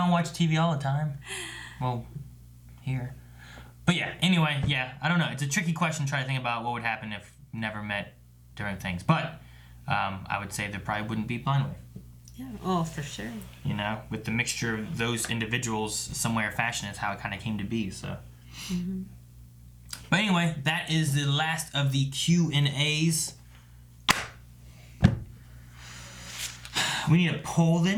watch TV all the time. Well, here. But yeah, anyway, yeah, I don't know. It's a tricky question to try to think about what would happen if never met during things. But I would say there probably wouldn't be Blind Wave. Yeah, oh, for sure. You know, with the mixture of those individuals, some way or fashion, is how it kind of came to be. So. Mm-hmm. But anyway, that is the last of the Q&As. We need a poll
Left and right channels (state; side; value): identical; both; correlation 1.00